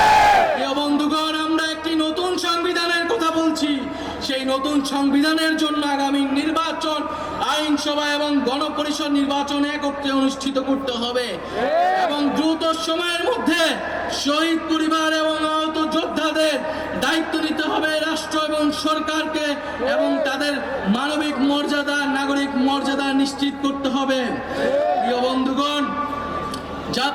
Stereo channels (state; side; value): identical; both; correlation 1.00